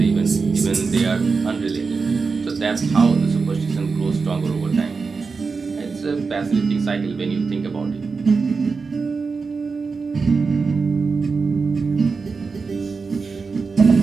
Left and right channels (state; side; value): quieter; left; 4.7 dB